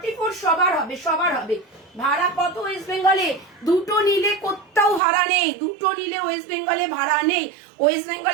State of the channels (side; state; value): left; drops out; at 5.0 s